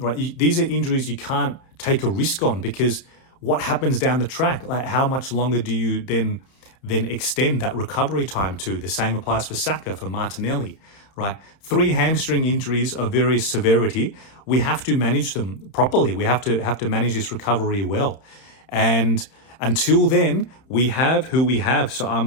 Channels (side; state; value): right; late; 31 ms